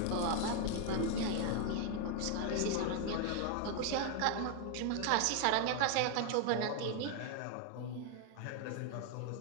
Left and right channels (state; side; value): different; both; correlation 0.01